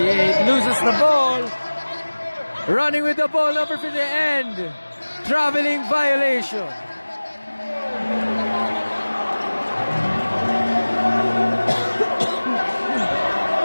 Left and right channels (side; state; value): both; inverted; correlation -1.00